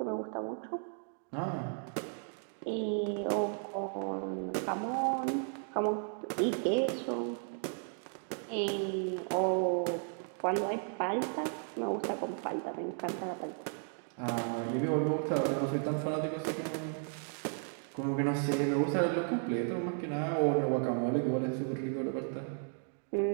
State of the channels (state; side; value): silent; left; 55 dB below the other